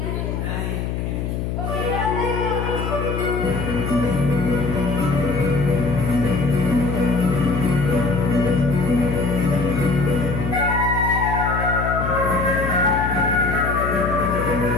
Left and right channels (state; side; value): noise; left; hum, 3 dB below the sound